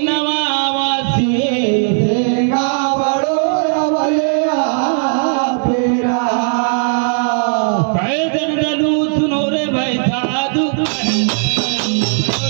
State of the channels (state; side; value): silent; left; 62 dB below the other